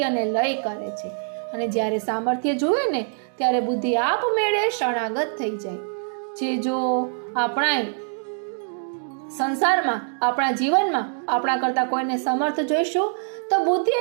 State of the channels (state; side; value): silent; left; 63 dB below the other